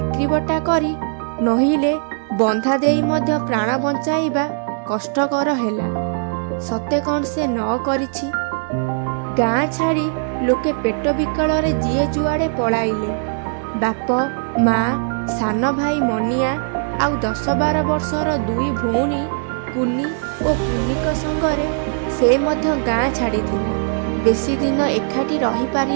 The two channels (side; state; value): left; silent; digital silence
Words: କରି ନହିଲେ ବନ୍ଧା ଦେଇ ମଧ୍ୟ ପ୍ରାଣ ବଞ୍ଚାଇବା କଷ୍ଟକର ହେଲା। ସତେ କ'ଣ ସେ ନ କରିଛି? ଗାଁ ଛାଡ଼ି ଲୋକେ ପେଟ ବିକଳରେ ଯିଏ ଯୁଆଡ଼େ ପଳାଇଲେ। ବାପ, ମା, ସାନ ଭାଇ ମନିଆ ଆଉ 10-12 ବର୍ଷର 2 ଭଉଣୀ କୁନି ଓ କୁନିଙ୍କ ସଙ୍ଗରେ ସେ ମଧ୍ୟ ଗାଁ ଛାଡ଼ିଥିଲା। ବେଶୀ ଦିନ ଏକାଠି